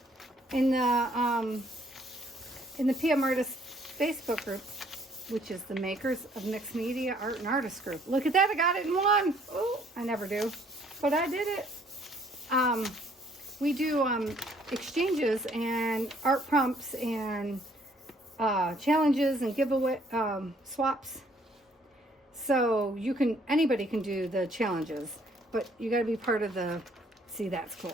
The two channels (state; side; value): normal; both; correlation 0.63